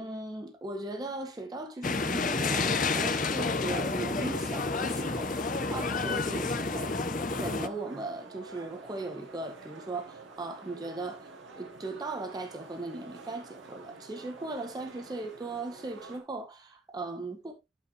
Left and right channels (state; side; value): normal; both; correlation 0.43